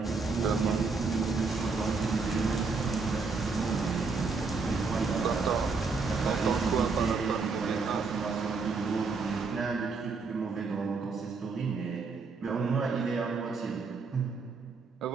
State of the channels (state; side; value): quieter; left; 4.4 dB